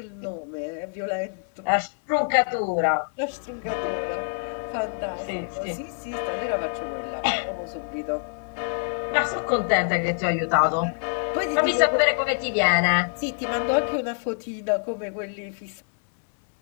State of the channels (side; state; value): right; silent; 61 dB below the other